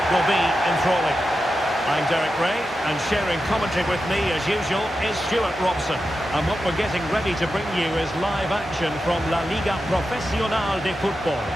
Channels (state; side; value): normal; both; correlation 0.90